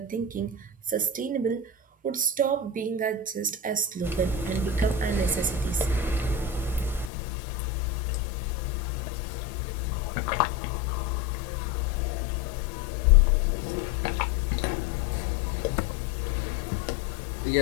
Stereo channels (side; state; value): right; drops out; at 7.1 s